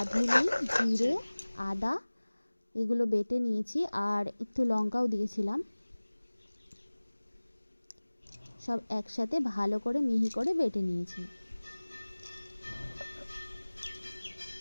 জিরে, আদা এগুলো বেটে নিয়েছি, আর একটু লঙ্কাও দিয়েছিলাম, সব একসাথে ভালো করে মিহি করে বেটে নিয়েছি।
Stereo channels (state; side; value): inverted; both; correlation -1.00